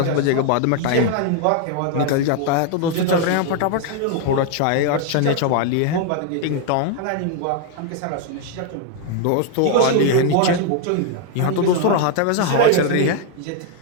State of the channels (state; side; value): different; both; correlation 0.00